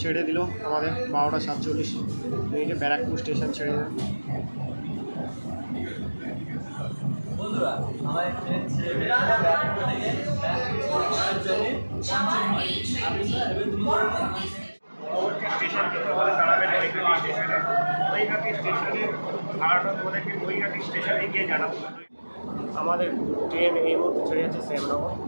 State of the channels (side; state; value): both; inverted; correlation -1.00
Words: ছেড়ে দিল আমাদের 12টা 47 ব্যারাকপুর স্টেশন ছেড়ে দিল। বন্ধুরা আমার ট্রেন ছেড়ে ব্যারাকপুর থেকে পরবর্তী স্টেশন কিন্তু আমাদের দাঁড়াবে নৈহাটি স্টেশনে। নৈহাটি স্টেশনের ভাড়াটা তোমাদেরকে নৈহাটি স্টেশনে গিয়ে জানাবো। আমাদের ট্রেন এই মুহূর্তে ছেড়ে যাচ্ছে শ্যামনগর।